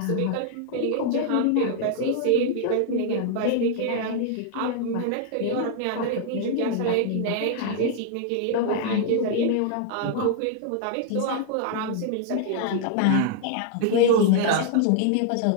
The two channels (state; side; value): different; both; correlation 0.00